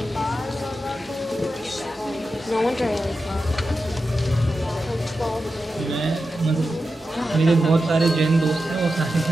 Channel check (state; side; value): normal; both; correlation 0.90